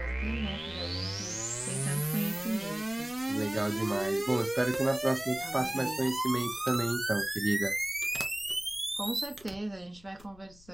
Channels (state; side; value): noise; left; rumble, 23 dB below the sound